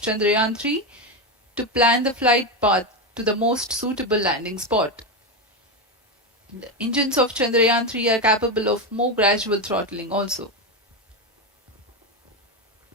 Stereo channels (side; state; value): both; normal; correlation 0.11